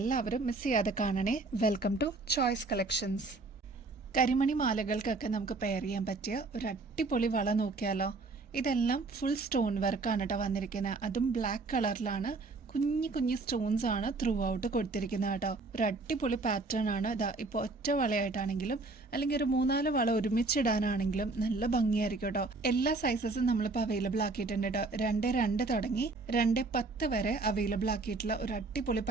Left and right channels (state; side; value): quieter; left; 3.6 dB